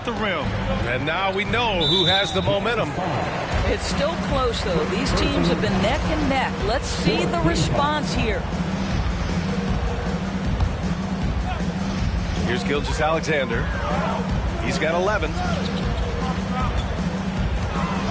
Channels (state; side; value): identical; both; correlation 1.00